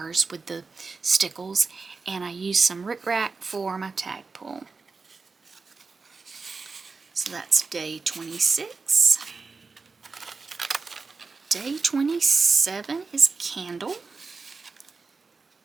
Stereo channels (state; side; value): quieter; left; 4.4 dB